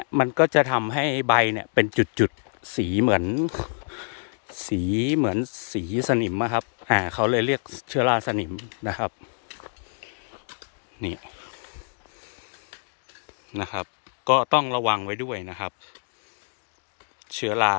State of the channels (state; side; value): silent; right; digital silence